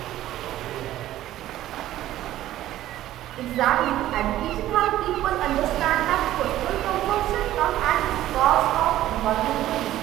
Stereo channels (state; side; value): quieter; left; 13.9 dB